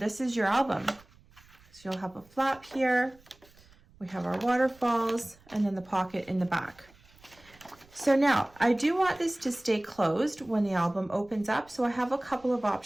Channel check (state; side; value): noise; right; rumble, 28 dB below the sound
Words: is your album. So you'll have a flap here. We have our waterfalls and then the pocket in the back. So now I do want this to stay closed when the album opens up. So I have a couple of